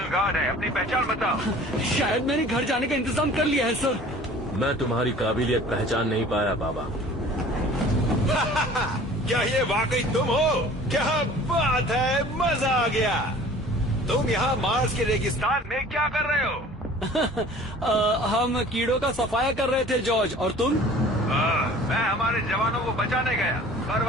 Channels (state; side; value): normal; both; correlation 0.47